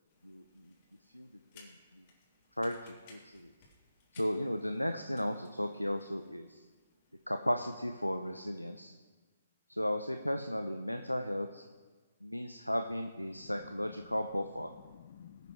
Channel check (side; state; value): both; inverted; correlation -0.96